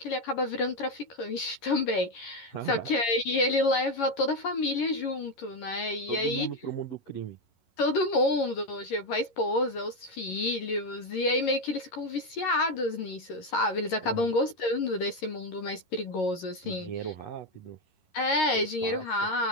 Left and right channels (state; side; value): late; right; 11 ms